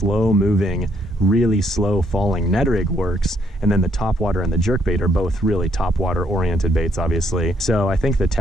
moving, really slow falling Ned rig works. And then the topwater and the jerkbait are both really topwater oriented baits, obviously. So I think the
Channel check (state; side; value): normal; both; correlation 0.71